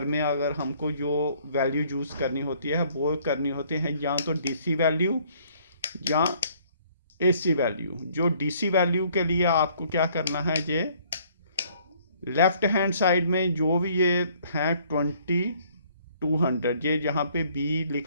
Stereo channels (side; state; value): both; inverted; correlation -0.61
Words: में अगर हमको जो वैल्यू यूज़ करनी होती है वो करनी होती है या तो डीसी वैल्यू या एसी वैल्यू। जो डीसी वैल्यू के लिए आपको क्या करना है, ये लेफ्ट हैंड साइड में जो भी ये है 2200, ये जहाँ पे बी